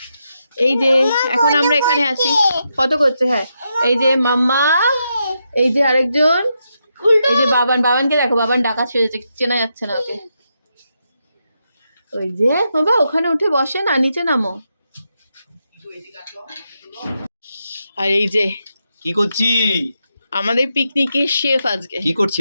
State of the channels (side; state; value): both; inverted; correlation -0.83